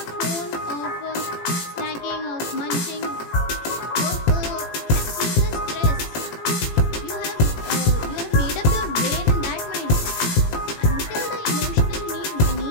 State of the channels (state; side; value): late; right; 17 ms